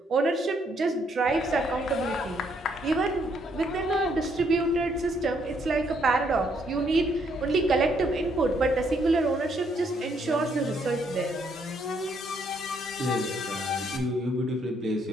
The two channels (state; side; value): normal; both; correlation 0.71